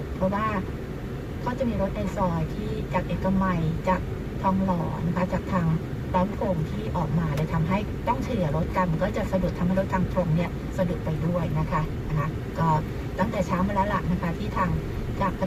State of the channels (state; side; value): identical; both; correlation 1.00